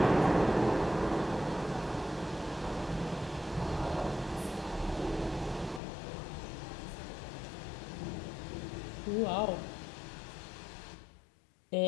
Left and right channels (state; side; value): drops out; right; at 5.8 s